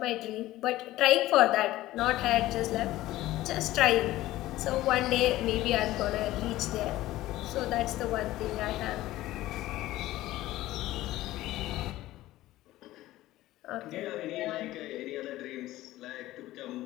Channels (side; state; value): right; quieter; 16.1 dB